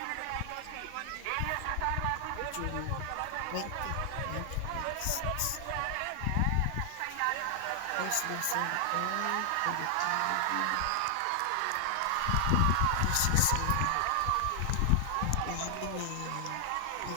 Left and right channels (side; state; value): both; different; correlation 0.00